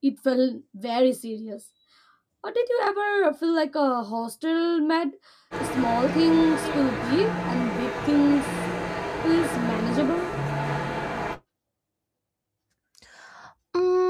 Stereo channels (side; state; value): both; identical; correlation 1.00